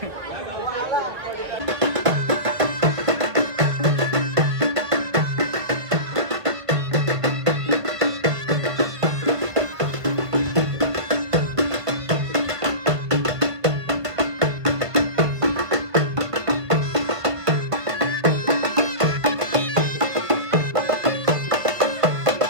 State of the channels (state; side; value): late; left; 1.3 ms